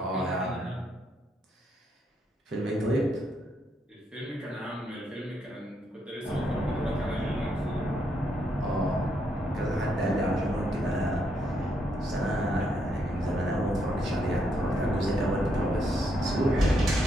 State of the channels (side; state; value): both; normal; correlation 0.77